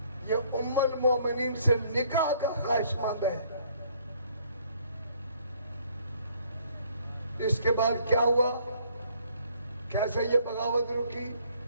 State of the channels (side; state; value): both; inverted; correlation -0.63